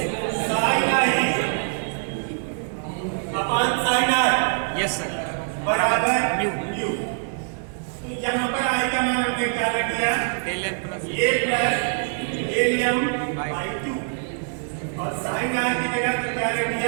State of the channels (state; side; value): silent; left; 58 dB below the other